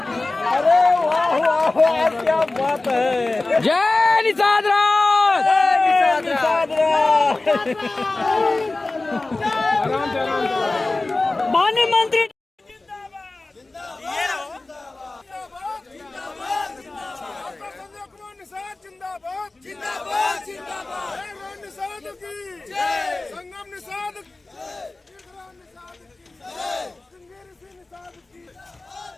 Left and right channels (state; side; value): quieter; right; 3.1 dB